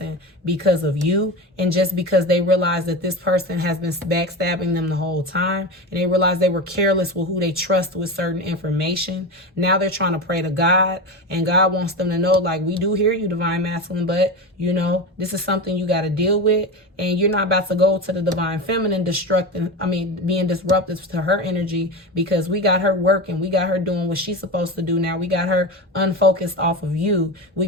because of you, and just because they realize that this person has been backstabbing them the whole time, and they realize they were careless with who they trust with certain information. Now they're trying to pray to God, and God wants them to know, like, we do hear you, divine masculine, but this is something you got to deal with, and you're not about to go to the divine feminine being disruptive to her energy, because we got her working, we got her doing what she's supposed to do now. We got her unfocused off of you. We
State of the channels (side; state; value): both; normal; correlation 0.23